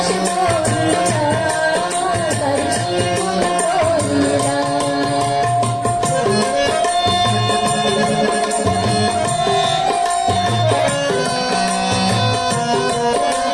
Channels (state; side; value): identical; both; correlation 1.00